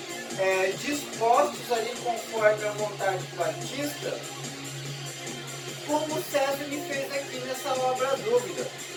dispostos ali conforme a vontade do artista, como Cézanne fez aqui nessa obra A Dúvida.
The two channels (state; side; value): identical; both; correlation 1.00